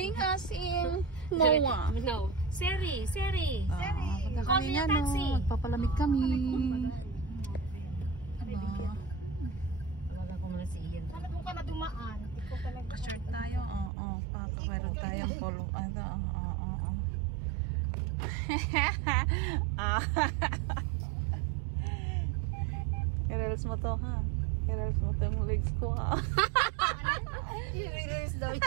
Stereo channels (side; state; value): left; drops out; at 13.9 s